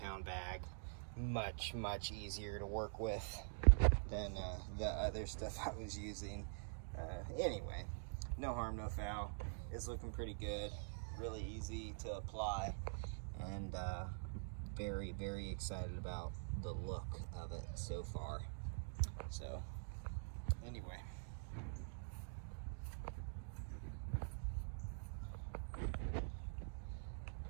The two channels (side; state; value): left; silent; digital silence